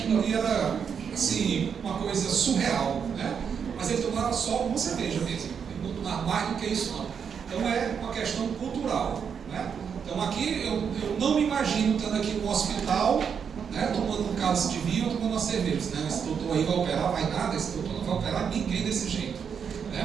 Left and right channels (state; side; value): quieter; left; 7.0 dB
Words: ali era assim, uma coisa surreal, né? Mas ele tomava só uma cerveja mesmo. Ele não tomava mais do que isso não. Então é uma questão cultural, né? Então aqui eu não me imagino estando aqui no hospital, né, tomando um cálice de vinho ou tomando uma cerveja. Né? Esse doutor aí vai operar, vai nada, esse doutor não vai operar ninguém desse jeito.